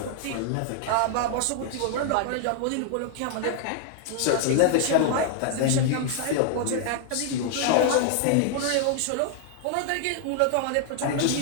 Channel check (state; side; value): different; both; correlation 0.00